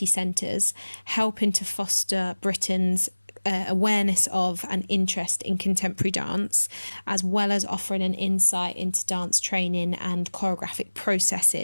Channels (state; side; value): inverted; both; correlation -1.00